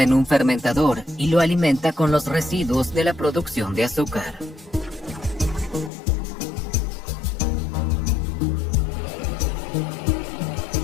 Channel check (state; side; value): drops out; right; at 5.9 s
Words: en un fermentador y lo alimenta con los residuos de la producción de azúcar.